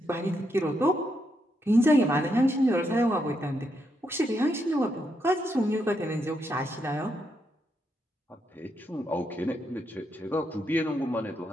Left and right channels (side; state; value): both; normal; correlation 0.80